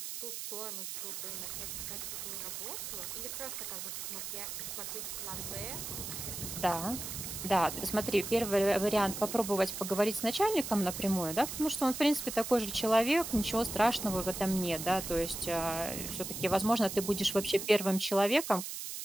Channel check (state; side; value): noise; right; hiss, 6 dB below the sound